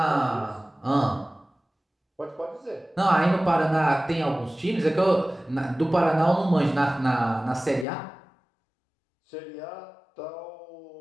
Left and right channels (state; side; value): drops out; right; at 7.9 s